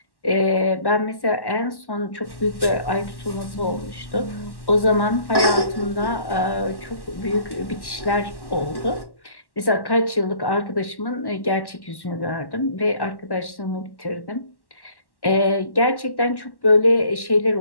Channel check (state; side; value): late; right; 1.1 ms